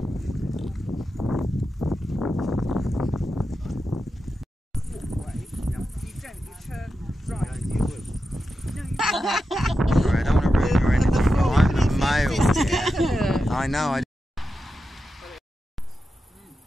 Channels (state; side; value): normal; both; correlation 0.90